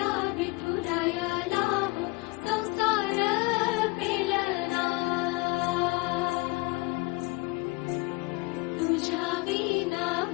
विठुरायाला हो संसार पेलना, तुझ्या विना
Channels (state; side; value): quieter; right; 25.1 dB